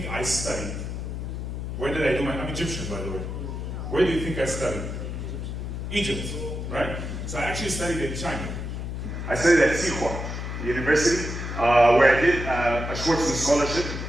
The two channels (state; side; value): noise; left; hum, 5 dB below the sound